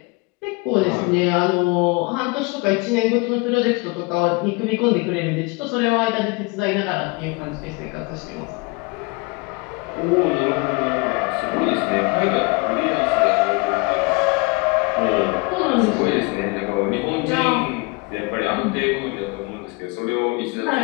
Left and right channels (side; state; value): right; quieter; 27.8 dB